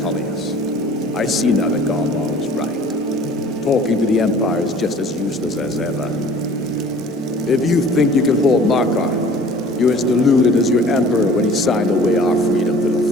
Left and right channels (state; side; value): normal; both; correlation 0.49